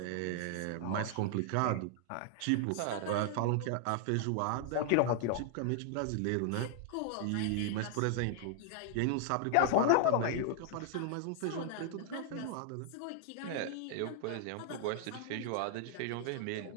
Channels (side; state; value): both; different; correlation 0.00